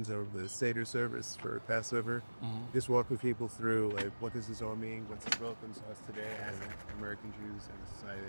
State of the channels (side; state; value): both; inverted; correlation -1.00